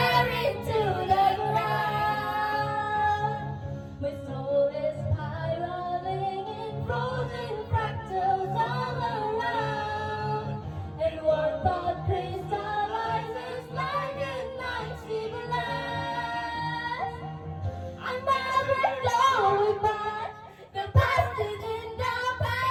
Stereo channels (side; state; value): both; identical; correlation 1.00